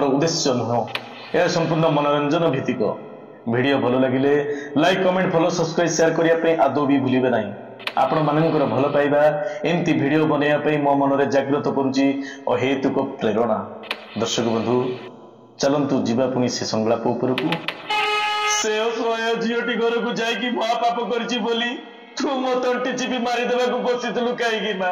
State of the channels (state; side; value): identical; both; correlation 1.00